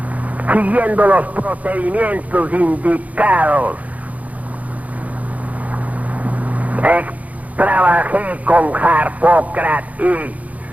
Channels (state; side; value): late; left; 0.072 ms